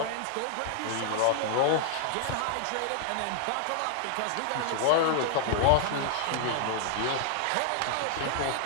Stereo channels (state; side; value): different; both; correlation 0.00